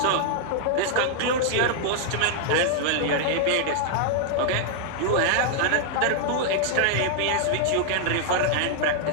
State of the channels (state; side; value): different; both; correlation -0.01